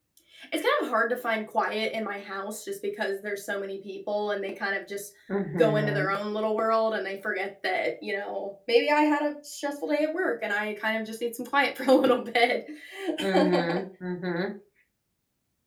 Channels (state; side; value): identical; both; correlation 1.00